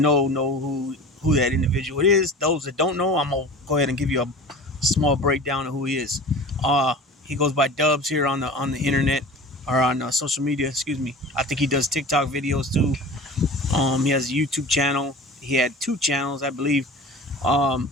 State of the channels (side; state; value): both; normal; correlation 0.37